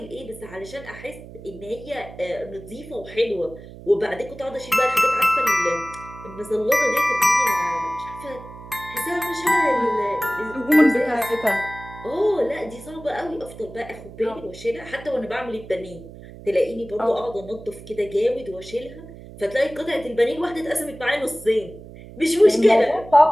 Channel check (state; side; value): noise; right; hum, 16 dB below the sound